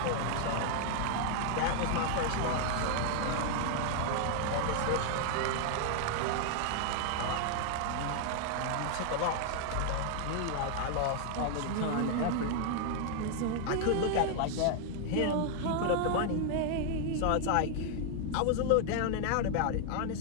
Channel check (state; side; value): different; both; correlation 0.00